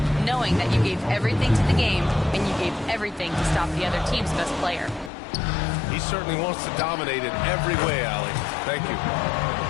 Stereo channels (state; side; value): drops out; right; at 5.1 s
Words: knowing that you gave everything to the game and you gave everything to stop the other team's best player." He certainly wants to dominate in every way, Allie. Thank you.